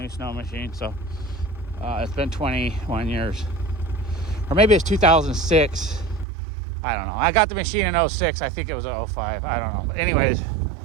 snow machine. So it's been 21 years. Or maybe it's 2006. I don't know. I got the machine in 06. I think it was 05. I don't know. But anyways,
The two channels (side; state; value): left; drops out; at 6.2 s